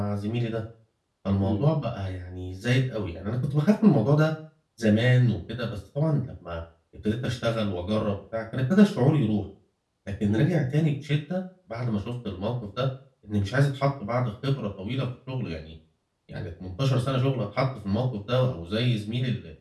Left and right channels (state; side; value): identical; both; correlation 1.00